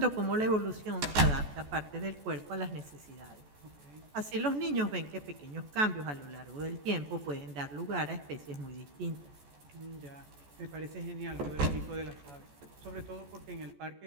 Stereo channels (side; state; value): left; late; 14 ms